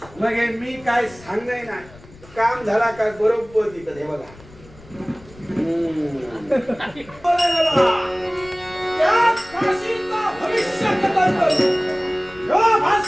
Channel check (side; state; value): left; noise; rumble, 22 dB below the sound